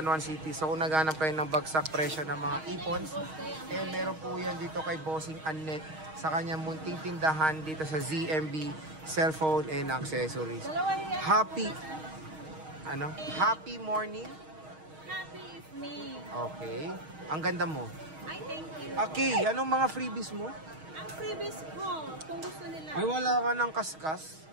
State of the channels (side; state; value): left; late; 6.4 ms